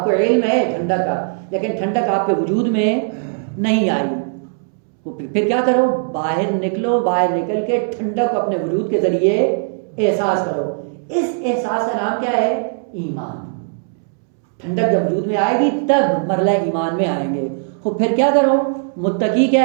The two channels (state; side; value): silent; left; 67 dB below the other